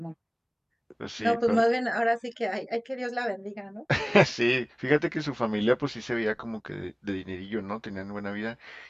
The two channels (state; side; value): identical; both; correlation 1.00